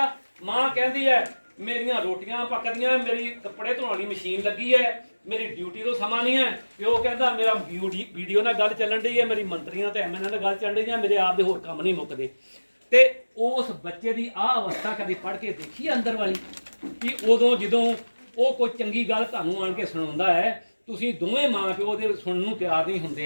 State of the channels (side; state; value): both; inverted; correlation -1.00